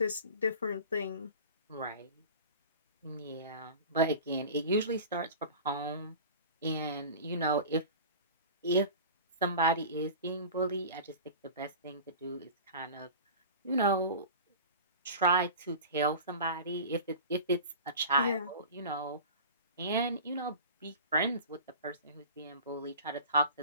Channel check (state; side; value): inverted; both; correlation -0.36